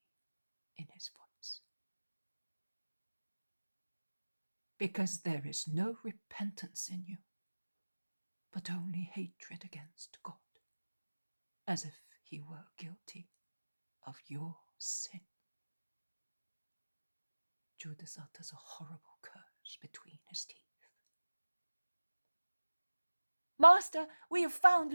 in his voice, "Because there is no repentance in you, but only hatred against God, as if he were guilty of your sin." Judas utters a horrible curse between his teeth. "Master, we have found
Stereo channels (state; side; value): inverted; both; correlation -1.00